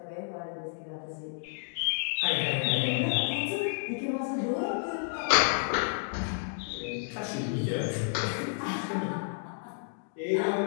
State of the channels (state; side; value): silent; right; digital silence